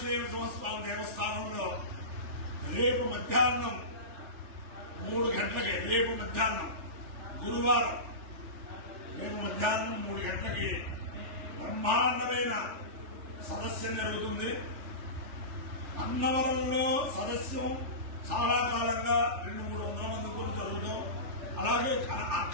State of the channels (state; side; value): late; left; 3.4 ms